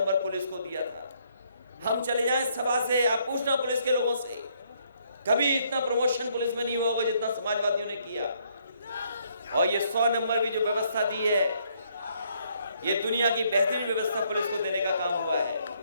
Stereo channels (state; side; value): inverted; both; correlation -0.69